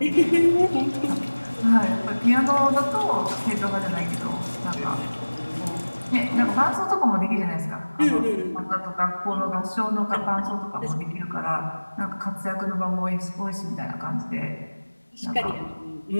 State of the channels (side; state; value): both; inverted; correlation -1.00